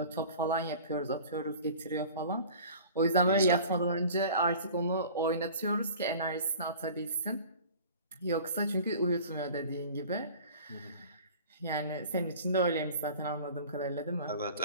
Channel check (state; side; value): inverted; both; correlation -0.43